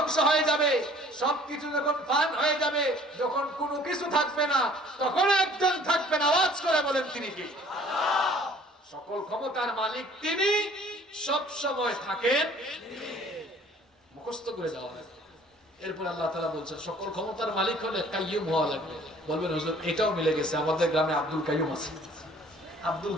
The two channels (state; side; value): normal; both; correlation 0.54